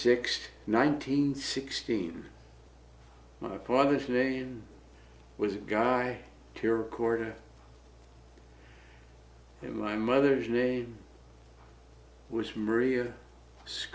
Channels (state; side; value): identical; both; correlation 1.00